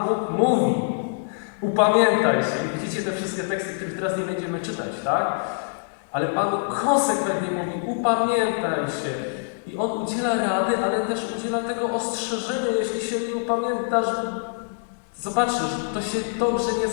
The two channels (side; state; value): right; silent; 62 dB below the other